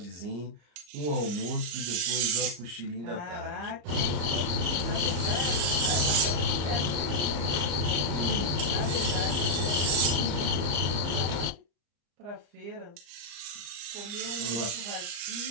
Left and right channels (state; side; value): late; left; 34 ms